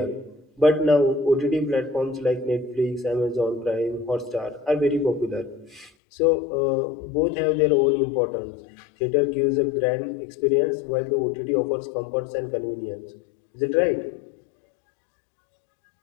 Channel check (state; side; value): drops out; right; at 5.9 s